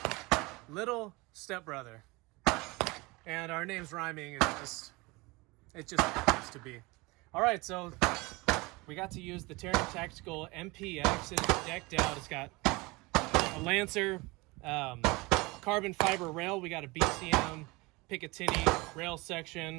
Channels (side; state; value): left; quieter; 24.1 dB